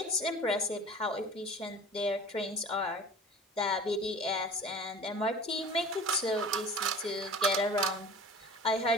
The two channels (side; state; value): both; normal; correlation 0.40